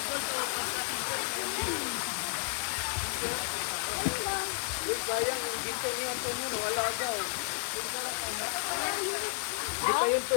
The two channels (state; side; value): silent; right; 56 dB below the other